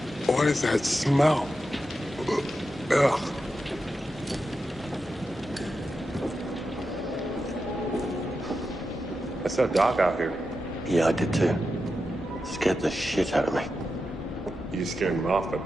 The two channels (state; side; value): normal; both; correlation 0.89